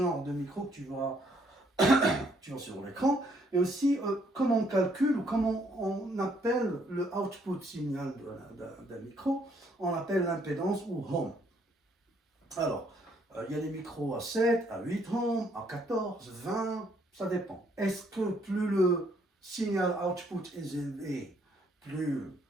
de micro que tu vois sur l'écran, et aussi comment on calcule ou comment on appelle le output signal d'un micro, on appelle l'impédance ou ohm. Alors, il y a des micros à 7, à 8 ohms, à 14, 20, ça dépend. Est-ce que plus le signal output est élevé, plus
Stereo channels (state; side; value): normal; both; correlation 0.68